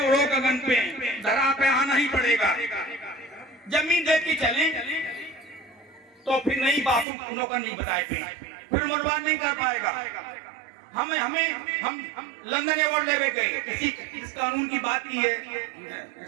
गगन पे, धरा पे आना ही पड़ेगा। जमीन देख के चले तो फिर नहीं बापू नौकर नहीं बताए थे, फिर मनवाद नहीं कर पाएगा। हम लंदन अवार्ड लेवे गए, इस कानून की बात की है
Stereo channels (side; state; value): left; drops out; at 7.1 s